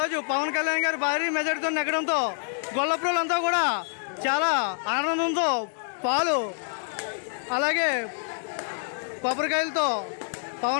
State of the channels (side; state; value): right; silent; 60 dB below the other